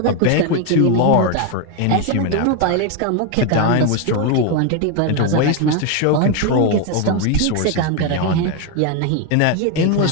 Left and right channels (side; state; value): both; different; correlation 0.02